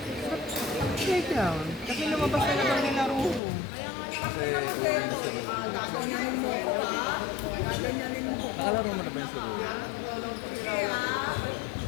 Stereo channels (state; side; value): drops out; right; at 3.4 s